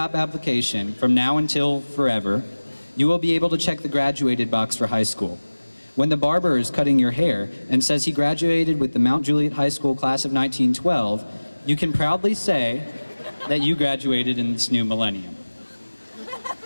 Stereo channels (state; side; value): inverted; both; correlation -1.00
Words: application, from now until forever, you will be able to check the graduated box for high school. When the barber is cutting your hair and says he graduated with the Mount Juliet High School class of 1912, you can proudly say that you graduated in this new millennium.